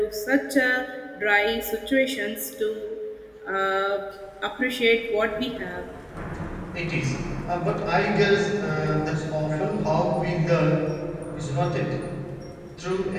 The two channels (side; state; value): both; identical; correlation 1.00